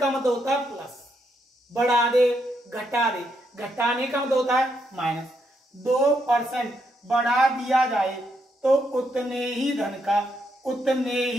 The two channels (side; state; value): both; normal; correlation 0.78